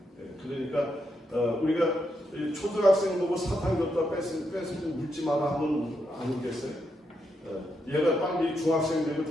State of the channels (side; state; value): both; normal; correlation 0.82